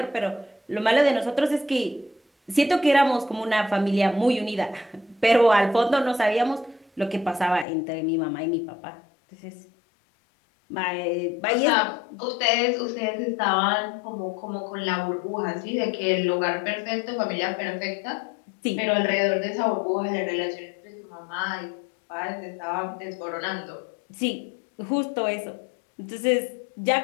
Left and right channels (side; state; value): right; drops out; at 7.7 s